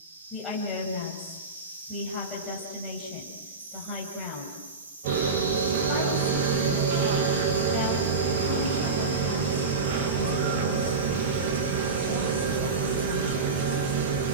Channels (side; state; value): left; quieter; 4.1 dB